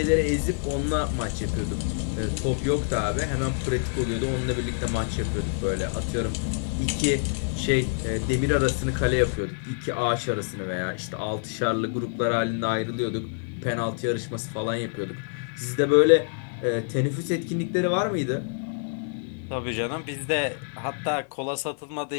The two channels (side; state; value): right; silent; 59 dB below the other